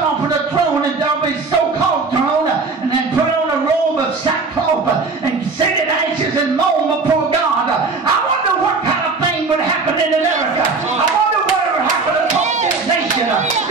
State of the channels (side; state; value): left; quieter; 4.2 dB